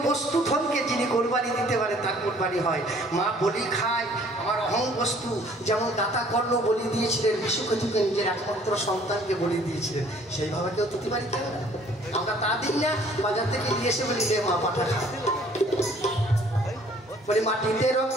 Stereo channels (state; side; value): normal; both; correlation 0.57